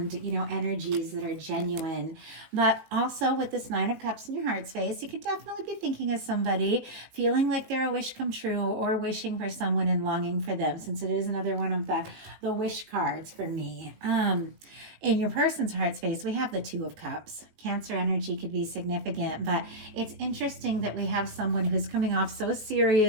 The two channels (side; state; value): left; late; 19 ms